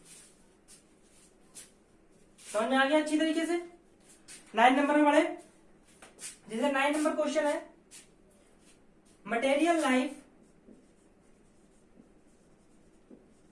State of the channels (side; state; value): both; identical; correlation 1.00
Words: समझ में आ गया अच्छी तरीके से। 9 नंबर में पढ़े, जैसे 9 नंबर क्वेश्चन है, मटेरियल लाइफ